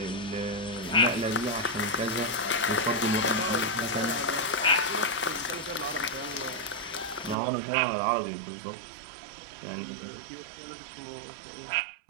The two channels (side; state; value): left; drops out; at 7.4 s